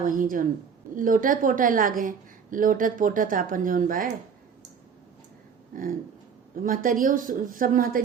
जौन लोटत पोटत अपन जौन बा महतरियों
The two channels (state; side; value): quieter; left; 6.6 dB